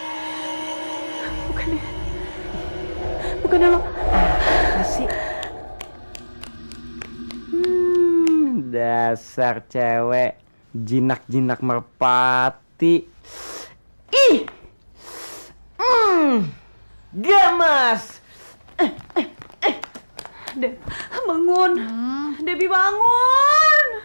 Bukannya lo. Apa sih? Dasar cewek jinak-jinak merpati. Ih. Gemes. Deb, bangun. Debbie bangun.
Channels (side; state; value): both; inverted; correlation -1.00